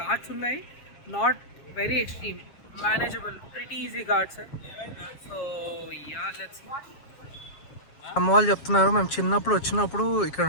ఘాట్స్ ఉన్నాయి, not very extreme, manageable, pretty easy ghats. So yeah, let's see. అమ్మ వాళ్ళు చెప్తున్నారు మేము చిన్నప్పుడు వచ్చినప్పుడు ఇక్కడ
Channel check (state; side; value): late; right; 7.3 ms